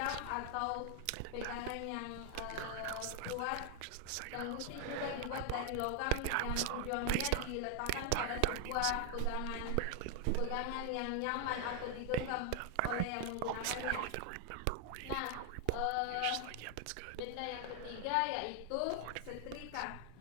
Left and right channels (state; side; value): different; both; correlation 0.00